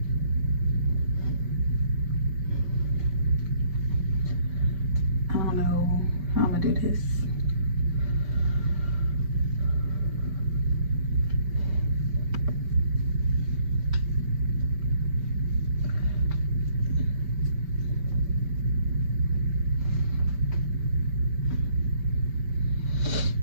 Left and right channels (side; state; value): left; late; 5.2 ms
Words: I don't know how I'm gonna do this.